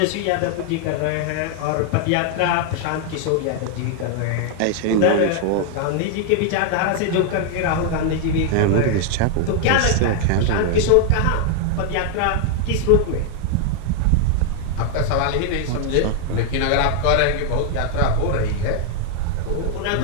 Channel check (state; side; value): different; both; correlation 0.00